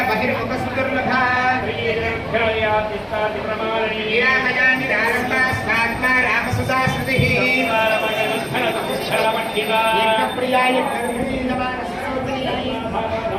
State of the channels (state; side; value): identical; both; correlation 1.00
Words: బహిర్ముఖ సుదుర్లభ రామసుతా శృతి ప్రియాయ